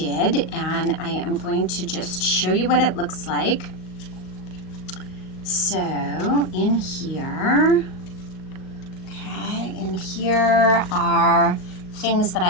and I am going to just show you what it looks like. So in here, here are things that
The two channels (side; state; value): right; late; 38 ms